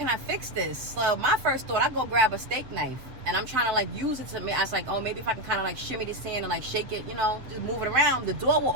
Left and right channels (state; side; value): late; left; 7.6 ms